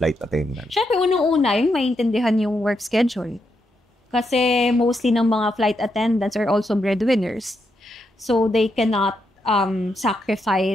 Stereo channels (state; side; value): normal; both; correlation 0.82